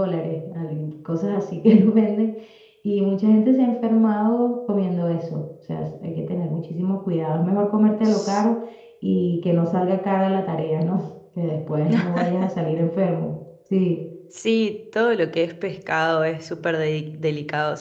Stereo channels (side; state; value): both; identical; correlation 1.00